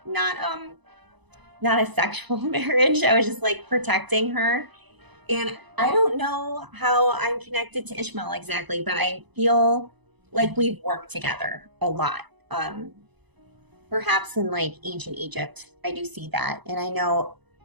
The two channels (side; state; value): left; late; 1.0 ms